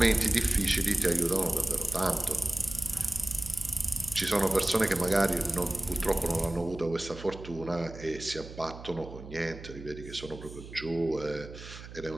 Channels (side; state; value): right; noise; hum, 14 dB below the sound